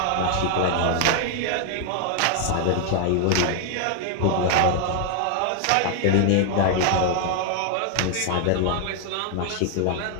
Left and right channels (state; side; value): different; both; correlation 0.00